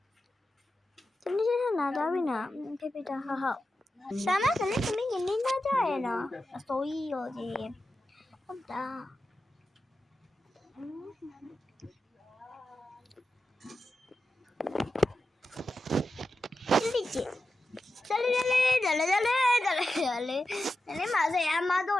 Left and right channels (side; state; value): both; normal; correlation 0.91